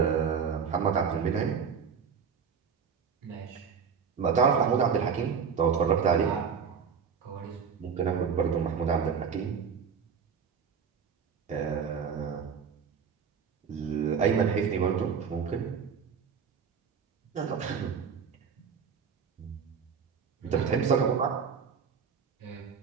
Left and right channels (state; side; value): quieter; left; 6.5 dB